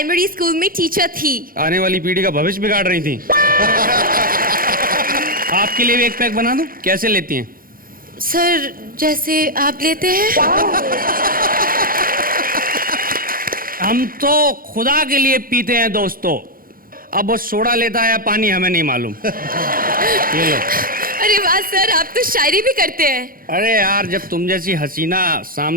स्कूल में टीचर थी। आने वाली पीढ़ी का भविष्य बिगाड़ रही थी। आपके लिए भी एक पैक बना दूं? कैसे लेती हैं? सर, जैसे आप लेते हैं। हम तो खुदा के लिए पीते हैं दोस्तों। अब वो सोडा लेता है या पानी हमें नहीं मालूम। ये लो। अरे वाह सर, आप तो शायरी भी करते हैं। अरे यार, जब तुम जैसी हसीना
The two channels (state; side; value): late; left; 0.42 ms